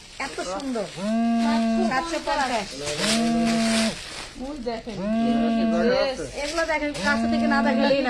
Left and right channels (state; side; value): identical; both; correlation 1.00